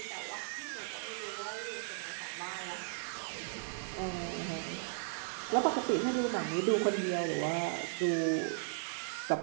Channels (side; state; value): left; silent; digital silence